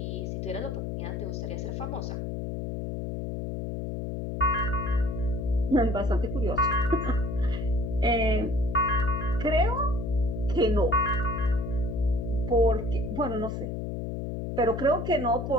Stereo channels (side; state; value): left; noise; hum, 4 dB below the sound